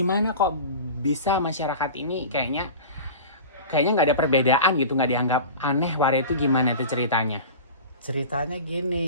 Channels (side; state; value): both; inverted; correlation -0.34